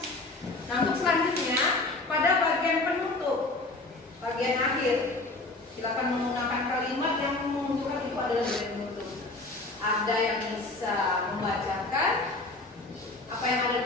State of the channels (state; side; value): quieter; right; 3.1 dB